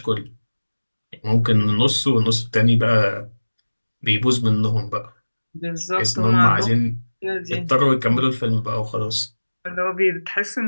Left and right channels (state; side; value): inverted; both; correlation -1.00